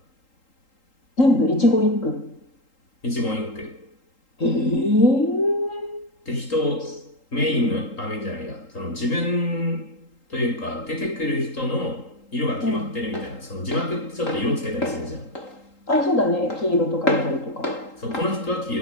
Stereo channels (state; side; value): late; right; 3.8 ms